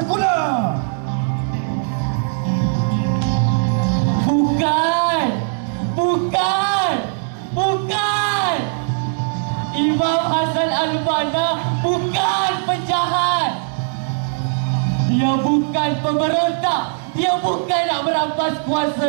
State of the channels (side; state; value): left; silent; 64 dB below the other